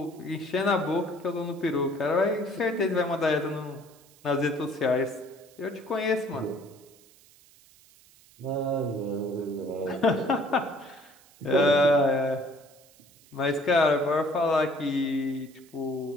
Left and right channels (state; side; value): noise; right; hiss, 27 dB below the sound